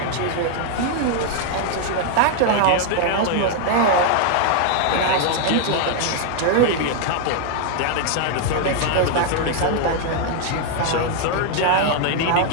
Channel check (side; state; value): both; different; correlation 0.00